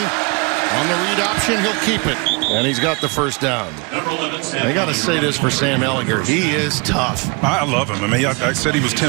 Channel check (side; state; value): left; quieter; 30.6 dB